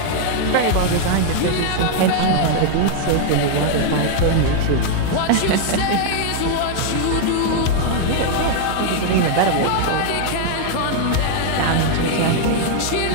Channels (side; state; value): both; different; correlation 0.00